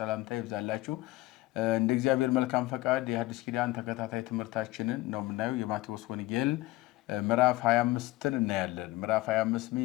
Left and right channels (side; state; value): right; quieter; 18.6 dB